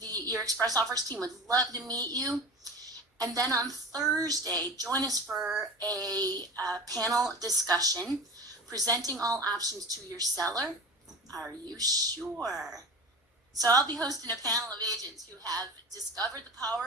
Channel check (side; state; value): both; normal; correlation 0.34